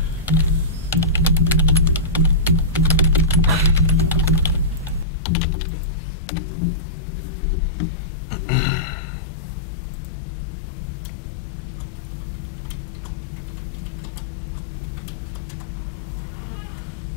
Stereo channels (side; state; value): right; drops out; at 5.1 s